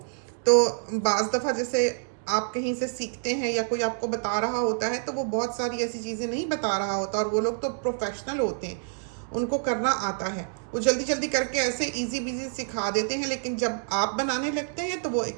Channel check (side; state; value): left; silent; digital silence